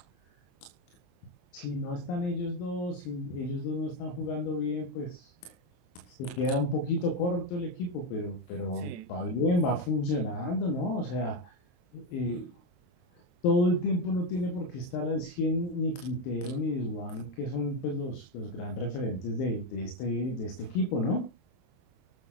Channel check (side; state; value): right; late; 23 ms